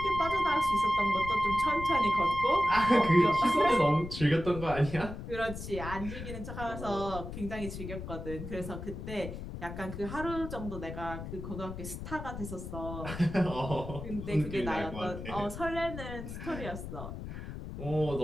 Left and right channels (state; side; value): noise; left; rumble, 9 dB below the sound